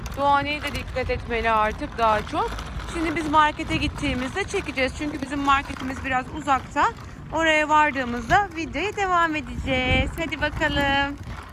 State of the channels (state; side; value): identical; both; correlation 1.00